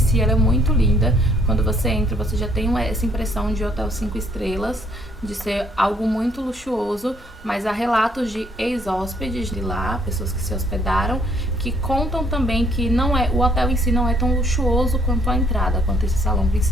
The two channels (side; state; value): both; normal; correlation 0.65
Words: ela é muito linda. Quando você entra, você já tem essa impressão de hotel 5 estrelas, de ser algo muito luxuoso, mas há relatos de ex-hóspedes de lá, pessoas que se hospedaram, que contam também que o hotel em si não é tão luxuoso quanto a entrada, quanto esse salão